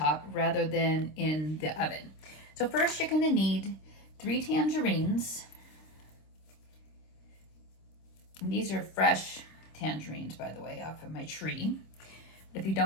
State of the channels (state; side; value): late; right; 26 ms